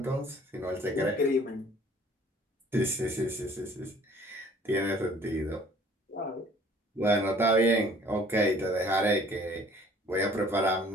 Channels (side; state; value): both; normal; correlation 0.54